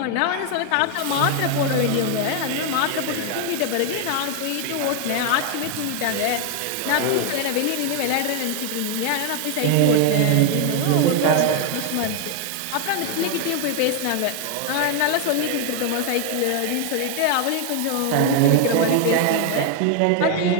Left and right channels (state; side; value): different; both; correlation 0.00